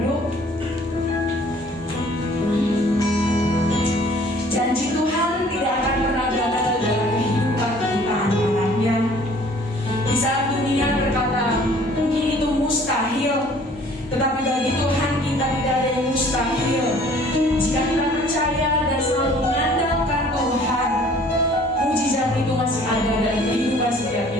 Janji Tuhan tidak akan pernah gagal dalam kehidupan kita anak-anaknya. Di saat dunia berkata mungkin itu mustahil, tetapi bagi Tuhan kita tidak ada yang mustahil. Jika kita percaya dan selalu mengandalkan Tuhan, mujizat itu masih ada dalam kehidupan setiap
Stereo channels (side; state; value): both; normal; correlation 0.54